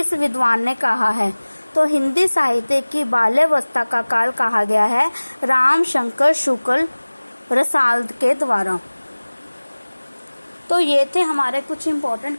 विद्वान ने कहा है। तो हिंदी साहित्य की बाल्यावस्था का काल कहा गया है रामशंकर शुक्ल रसाल के द्वारा। तो ये थे हमारे कुछ इम्पोर्टेंट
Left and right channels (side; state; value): both; inverted; correlation -1.00